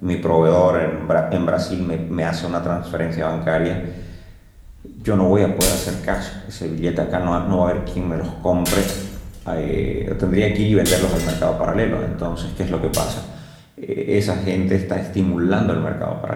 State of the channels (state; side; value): identical; both; correlation 1.00